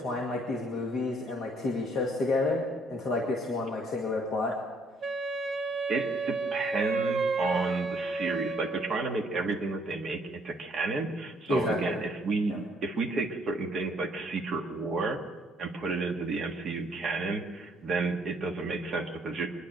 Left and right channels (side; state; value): both; normal; correlation 0.66